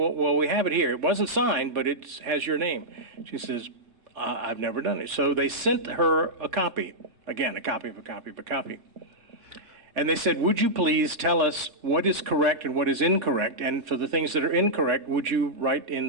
we have it here. It wasn't signed, but it has your name. She says, "I've never done it." So they sent her a copy. Again, a copy of a copy of a copy. And they said, "Would you please tell us what is correct and what is incorrect? And for the things that are incorrect, would you write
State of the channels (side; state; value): left; late; 3.4 ms